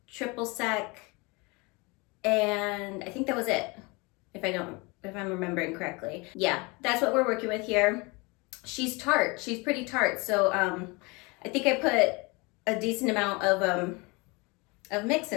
triple sec, and I think that was it, if I'm remembering correctly. Yeah, that's what we're working with here. She's tart. She's pretty tart. So I think I put a decent amount of mix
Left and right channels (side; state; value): right; quieter; 27.1 dB